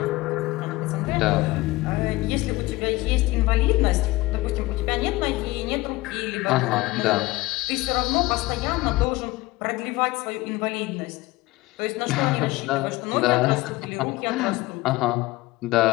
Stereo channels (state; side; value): quieter; right; 19.8 dB